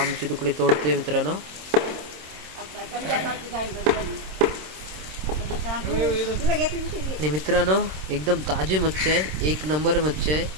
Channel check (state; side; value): late; left; 26 ms